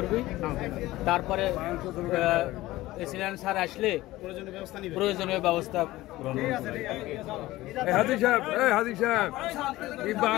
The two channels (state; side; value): quieter; right; 17.4 dB